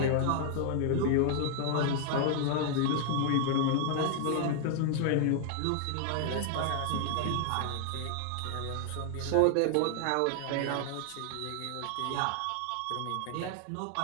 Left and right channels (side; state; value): both; different; correlation 0.00